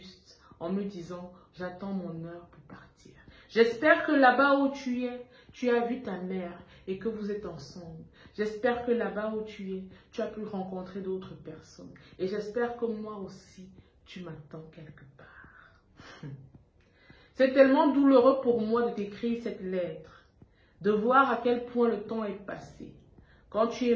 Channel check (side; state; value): both; identical; correlation 1.00